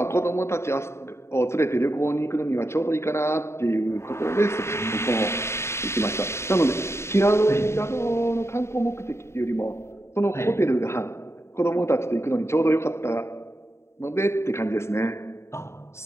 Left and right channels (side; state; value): right; late; 0.13 ms